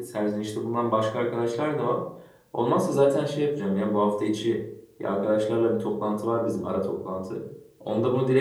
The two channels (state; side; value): identical; both; correlation 1.00